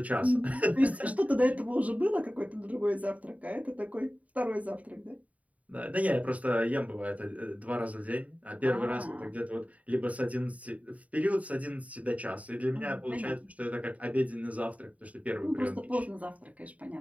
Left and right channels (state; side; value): late; left; 0.069 ms